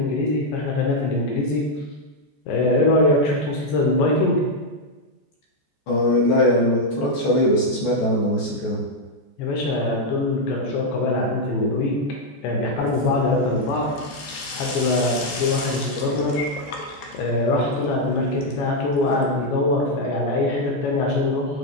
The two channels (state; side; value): late; right; 14 ms